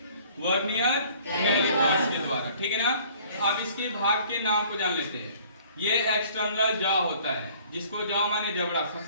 वर्नियर कैलिपर्स के द्वारा, ठीक है ना? अब इसके भाग के नाम को जान लेते हैं। ये एक्सटर्नल जॉ होता है, जिसको जॉ माने जबड़ा,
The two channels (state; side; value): inverted; both; correlation -0.54